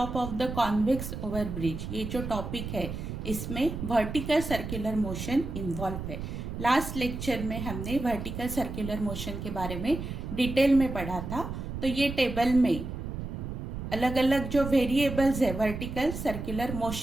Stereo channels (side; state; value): right; noise; rumble, 6 dB below the sound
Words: of the convex overbridge, ये जो टॉपिक है इसमें वर्टिकल सर्कुलर मोशन इन्वॉल्व है। लास्ट लेक्चर में हमने वर्टिकल सर्कुलर मोशन के बारे में डिटेल में पढ़ा था। तो ये टेबल में अलग अलग जो वेरिएबल्स है वर्टिकल सर्कुलर